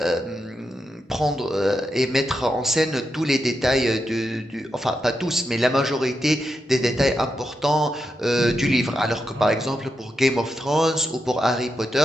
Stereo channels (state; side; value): normal; both; correlation 0.86